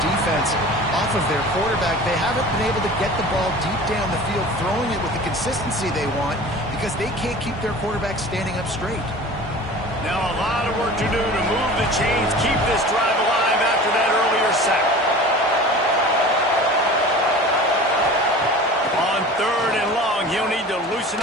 off of their quarterback. They haven't been able to get the ball deep down the field, throwing it with the consistency they want because they can't keep their quarterback standing up straight. Now a lot of work to do to move the chains, keep this drive alive after that earlier sack. On 3rd and long, he'll need to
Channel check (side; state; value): both; normal; correlation 0.39